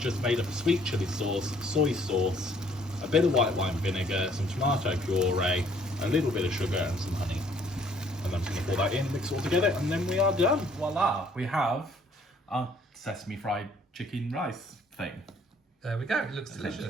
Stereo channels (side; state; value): both; normal; correlation 0.62